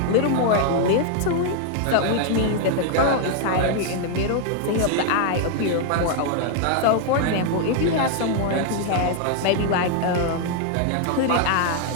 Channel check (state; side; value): different; both; correlation 0.00